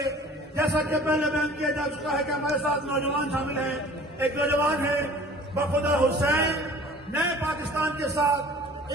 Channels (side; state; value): both; normal; correlation 0.47